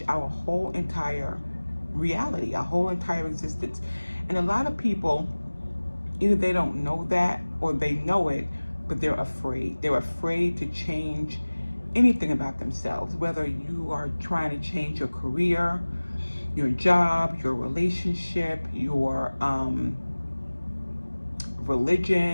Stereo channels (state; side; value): inverted; both; correlation -1.00